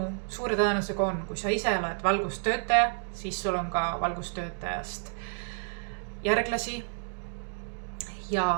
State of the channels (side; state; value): left; silent; digital silence